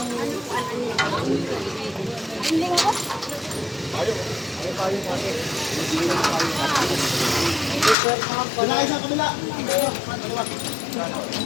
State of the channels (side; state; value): right; drops out; at 8.0 s